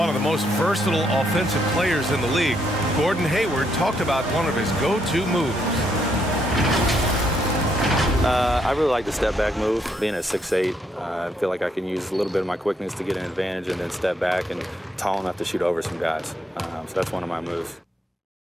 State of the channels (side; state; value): both; normal; correlation 0.74